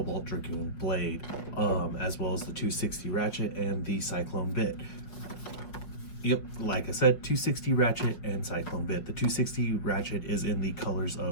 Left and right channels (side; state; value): right; late; 5.8 ms